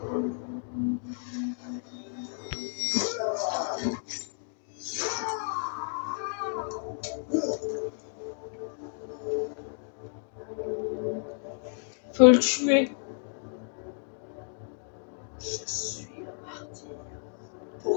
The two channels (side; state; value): right; silent; 57 dB below the other